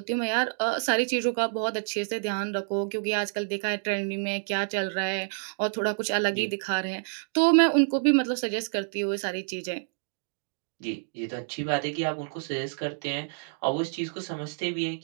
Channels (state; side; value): silent; left; digital silence